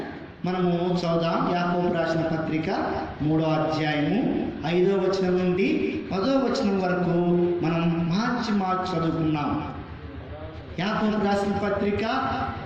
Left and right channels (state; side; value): identical; both; correlation 1.00